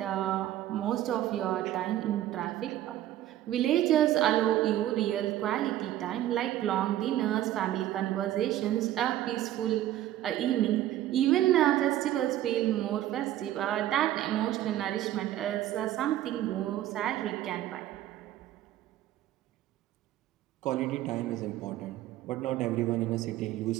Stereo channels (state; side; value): quieter; left; 13.3 dB